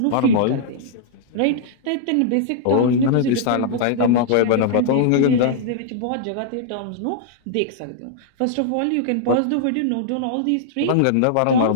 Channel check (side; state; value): both; different; correlation -0.01